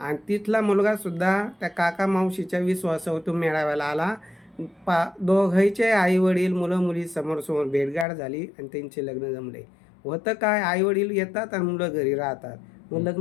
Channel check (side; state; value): right; drops out; at 8.1 s